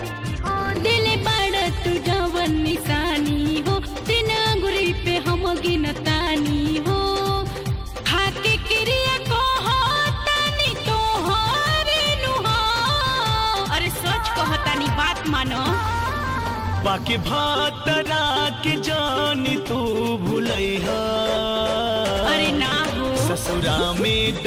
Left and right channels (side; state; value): both; identical; correlation 1.00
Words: दिल बड़ तू जवन निशानी हो दिन अंगुरी पे हम गिनतानी हो खाके क्रिया को हो तानी तो हरे नुहा। अरे सच कहतानी बात मानो बाकी भातरा के जानी तू भूलैहा अरे ना हो ससुरा में